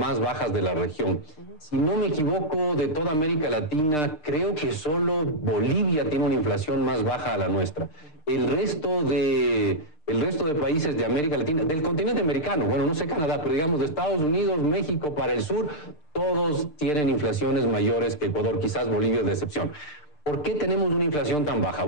bajas de la región. Si no me equivoco, de toda América Latina, creo que solo Bolivia tiene una inflación más baja a la nuestra. El resto de países de América Latina, del continente americano, bueno, no sé Canadá, pero digamos de Estados Unidos, México, para el sur, todos tienen inflaciones mayores que Ecuador, quizás Bolivia es de excepción. ¿Por qué tenemos una inflación tan baja?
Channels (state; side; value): late; right; 6.7 ms